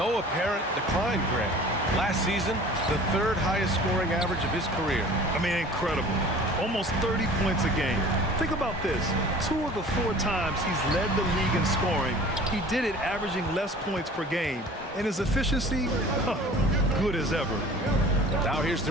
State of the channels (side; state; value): both; normal; correlation 0.45